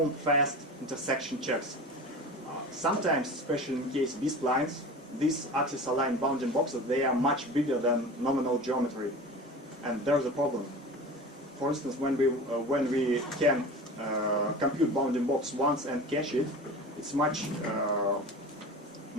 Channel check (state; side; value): normal; both; correlation 0.35